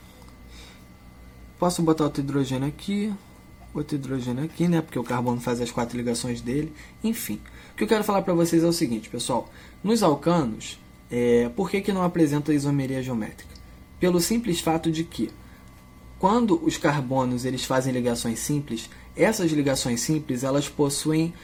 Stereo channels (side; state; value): both; identical; correlation 1.00